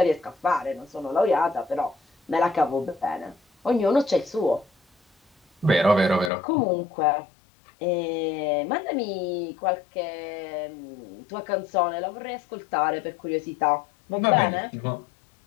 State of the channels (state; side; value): drops out; right; at 6.3 s